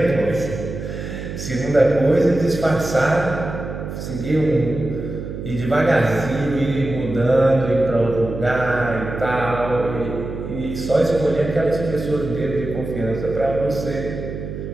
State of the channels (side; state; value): right; noise; hum, 8 dB below the sound